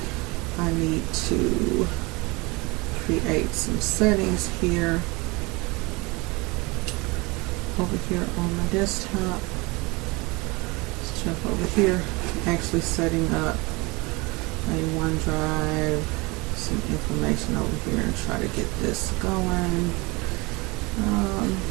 I need to create some settings here over here on my desktop. Let's jump over here, actually setting up a OneDrive, some information over here, and try to get this going.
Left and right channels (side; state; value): left; quieter; 25.5 dB